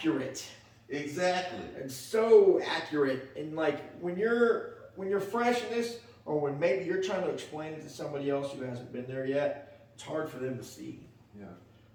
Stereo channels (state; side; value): identical; both; correlation 1.00